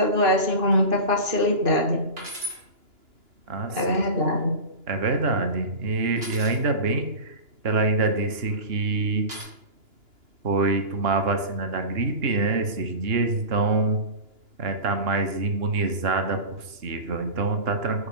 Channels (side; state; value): left; late; 2.9 ms